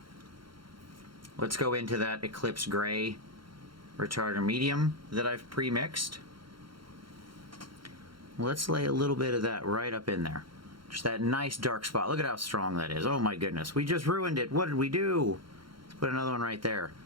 Let's go into that Eclipse Gray retardant medium that I've pre-mixed. Let's lay a little bit of that right up in there. Just that nice dark spot. Look at how strong that is. Oh my goodness. We just ruined it. What did we do? Let's put another one right there.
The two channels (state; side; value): late; left; 0.73 ms